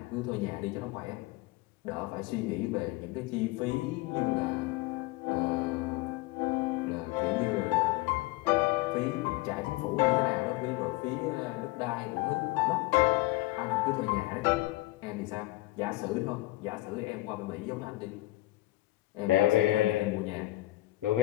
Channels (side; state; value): right; quieter; 18.8 dB